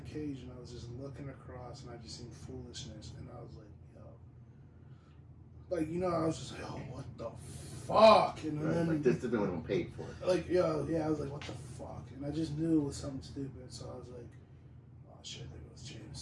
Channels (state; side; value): identical; both; correlation 1.00